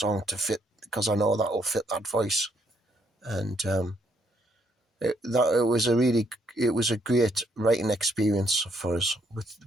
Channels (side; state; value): both; normal; correlation 0.72